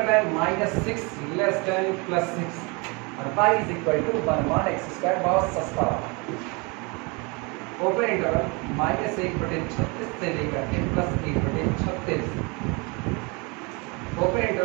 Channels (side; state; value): left; quieter; 29.2 dB